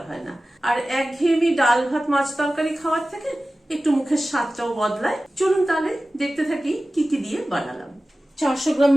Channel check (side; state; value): both; normal; correlation 0.96